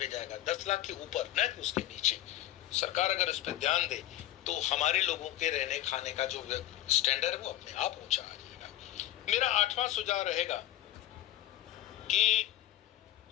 जाएगा, 10 लाख के ऊपर, न कि उसके नीचे। सरकार अगर इस पर ध्यान दे तो हमारे लोगों के रहने खाने का जो स्टैंडर्ड है वो अपने आप ऊंचा आ जाएगा। मेरा 8वां सुझाव रहेगा कि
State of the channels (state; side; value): quieter; right; 14.1 dB